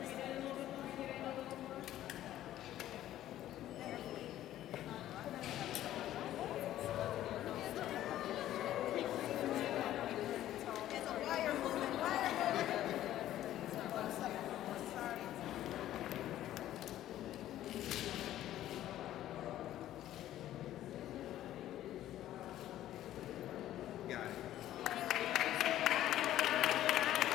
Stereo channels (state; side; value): quieter; right; 13.1 dB